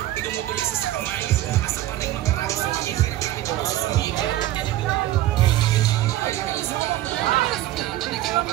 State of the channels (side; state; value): left; quieter; 14.7 dB